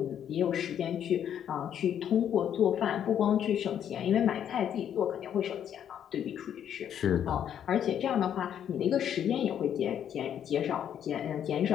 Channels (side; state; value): right; quieter; 9.5 dB